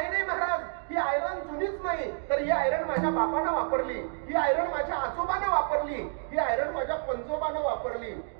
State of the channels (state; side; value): silent; left; digital silence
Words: नाही महाराज, ही आयरन जुनीच नाही, तर ही आयरन माझ्या बापानं वापरली, ही आयरन माझ्या आजोबानं वापरली, ही आयरन माझ्या पंजोबानं वापरली,